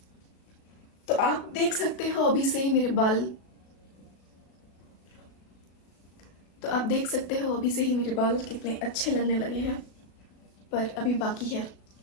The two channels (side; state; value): right; late; 36 ms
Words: तो आप देख सकते हो अभी से ही मेरे बाल, कितने अच्छे लगने लगे हैं, पर अभी बाकी है